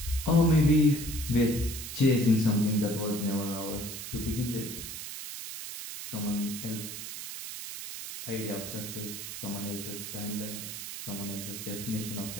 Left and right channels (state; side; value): noise; right; hiss, 8 dB below the sound